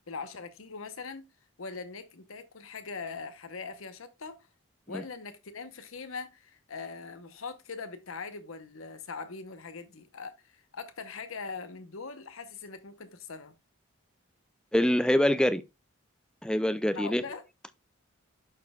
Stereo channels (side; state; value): both; normal; correlation 0.77